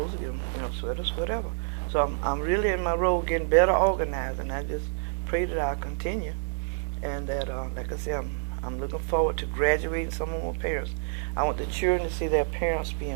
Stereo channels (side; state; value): left; silent; digital silence